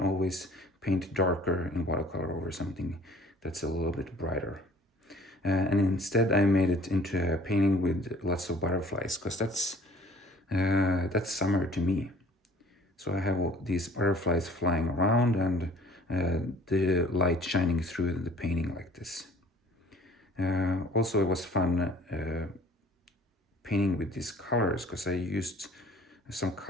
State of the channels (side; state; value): both; normal; correlation 0.52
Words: paint darker in watercolor over something that's a little bit brighter. And instead I made it into a painting with lots of butterflies, because that's summer to me. So I have all these butterflies flying around and the light shining through the painting like this. Also, it was fun painting with these colors, because I used some